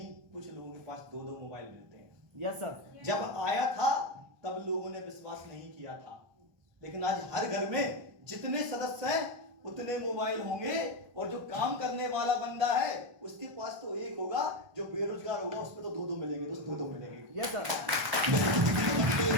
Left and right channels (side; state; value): left; late; 1.4 ms